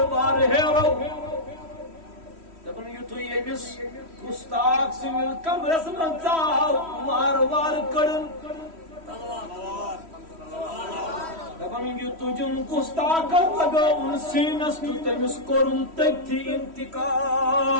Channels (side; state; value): left; late; 3.1 ms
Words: وار ہیرو دپن یُتھُے ییٚمِس گُستاخ سٕنٛدِس کمرس منٛز ژاو وارٕ وارٕ کٔڑٕن دپن یہِ تُجُن گُستاخن لگٲوُن سیٖنس تہٕ تٔمِس کوٚرُن تٔتھی انتقال